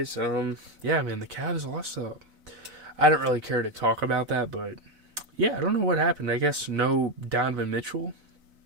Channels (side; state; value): left; late; 4.0 ms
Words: Yeah, man, the Cavs lost. I don't really care to talk about that, but yeah, I don't know what happened. I guess no Donovan Mitchell.